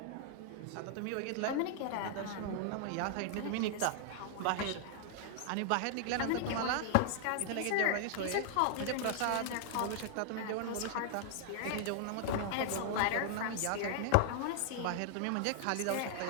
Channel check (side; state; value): both; different; correlation 0.00